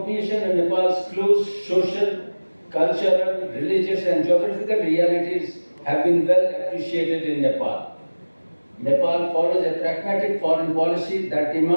of Nepal's close social, cultural, religious, and geographical realities have been well appreciated in Nepal. Nepal follows a pragmatic foreign policy that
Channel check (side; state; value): both; inverted; correlation -1.00